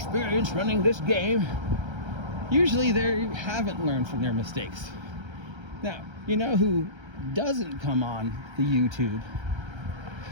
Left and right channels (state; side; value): late; left; 1.3 ms